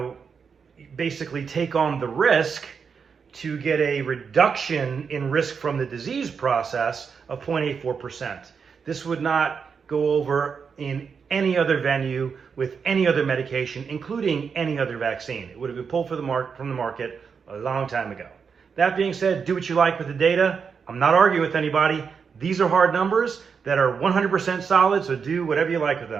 basically take on the risk to get a reduction in risk from the disease process of 0.84%? This would not go over in any other venue with any other medication, including any other vaccine. It would have been pulled from the market a long time ago. That being said, do what you like with the data. I'm not arguing with anybody. These are hard numbers that are 100% solid, so do whatever you like with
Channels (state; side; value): quieter; left; 6.0 dB